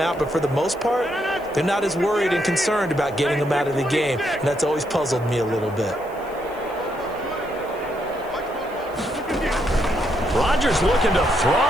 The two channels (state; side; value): noise; right; hiss, 26 dB below the sound